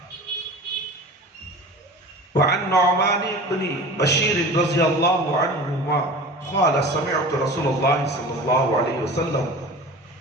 وعن نعمان بن بشیر رضی اللہ عنہما قال سمعت رسول اللہ صلی اللہ علیہ وسلم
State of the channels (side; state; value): both; normal; correlation 0.37